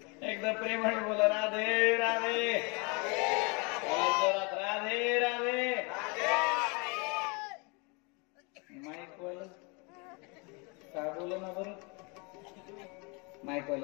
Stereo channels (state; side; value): quieter; right; 30.7 dB